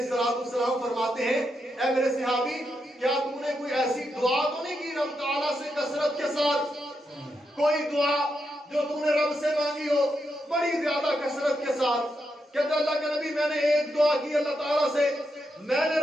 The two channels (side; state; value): both; normal; correlation 0.84